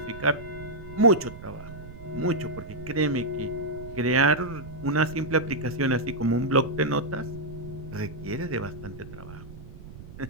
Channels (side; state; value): right; noise; rumble, 14 dB below the sound